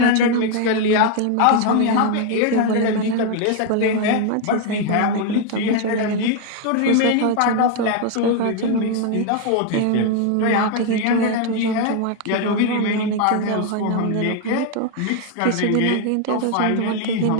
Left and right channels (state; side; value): different; both; correlation 0.01